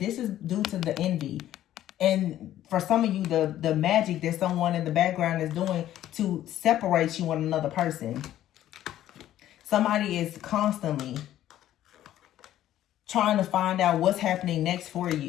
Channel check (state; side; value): quieter; right; 12.7 dB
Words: is due to the envy. And for some of you, the magic that someone in the background is doing to separate you and another person. Somebody is constantly trying to find out what's happening next for